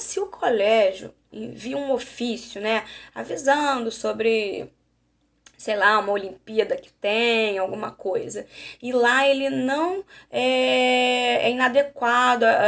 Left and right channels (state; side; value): identical; both; correlation 1.00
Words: o colégio envia um ofício, né? Avisando sobre, sei lá, uma Olimpíada que tem, alguma coisa. E lá ele não é inadequado,